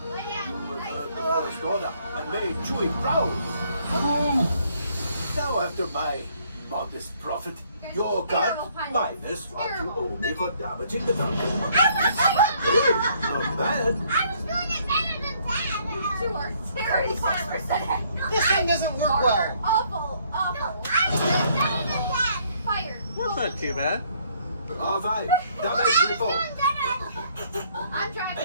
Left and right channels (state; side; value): inverted; both; correlation -0.65